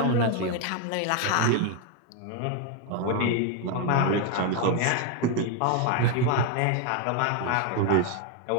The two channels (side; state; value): both; different; correlation 0.01